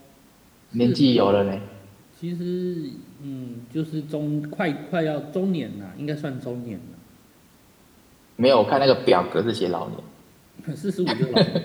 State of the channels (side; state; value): both; identical; correlation 1.00